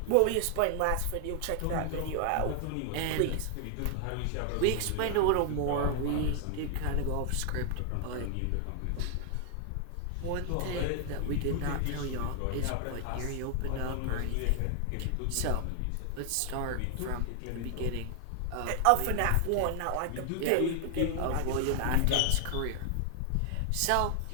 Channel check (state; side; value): different; both; correlation 0.00